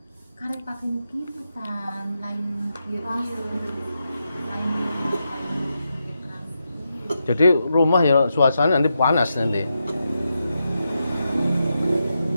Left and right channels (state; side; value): inverted; both; correlation -0.86